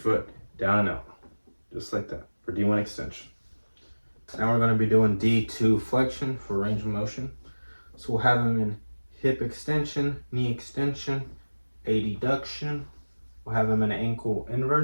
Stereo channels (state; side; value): inverted; both; correlation -1.00